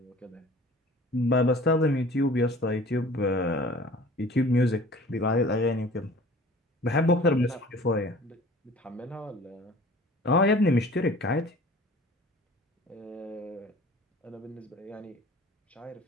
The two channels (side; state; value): both; normal; correlation 0.46